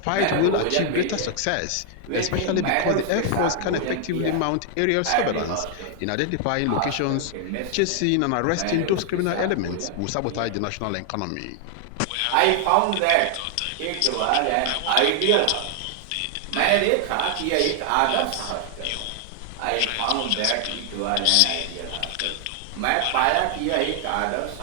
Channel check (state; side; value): different; both; correlation 0.00